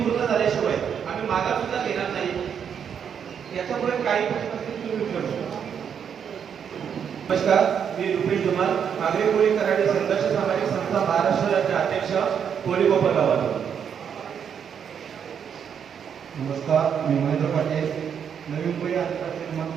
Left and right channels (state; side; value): quieter; left; 7.8 dB